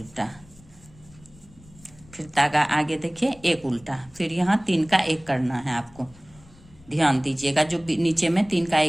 फिर धागा आगे देखिए एक उल्टा। फिर यहाँ 3 का 1 करना है आपको, ध्यान दीजिएगा। जो नीचे में 3 का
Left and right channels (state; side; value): noise; left; rumble, 25 dB below the sound